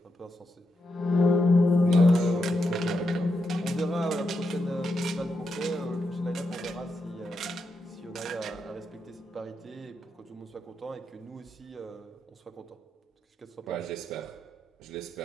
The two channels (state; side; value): normal; both; correlation 0.84